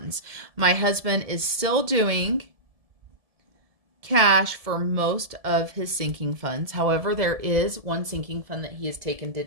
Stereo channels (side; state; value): left; late; 1.7 ms